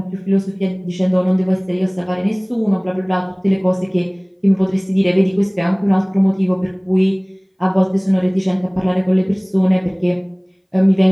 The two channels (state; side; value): identical; both; correlation 1.00